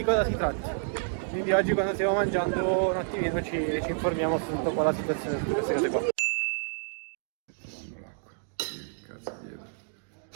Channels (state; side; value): silent; left; digital silence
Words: cosa si tratta. Quindi oggi quando stiamo mangiando un attimino ci informiamo su tutta qua la situazione, su tutte queste cose qua. Cazzo